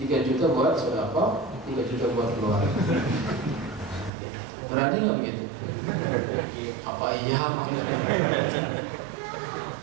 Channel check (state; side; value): drops out; left; at 4.1 s